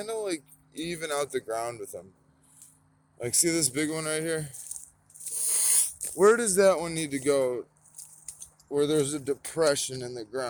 of like even out the ground with them. Like, see this big one right here? Where does that one need to go where there's a depression in the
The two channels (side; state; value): both; identical; correlation 1.00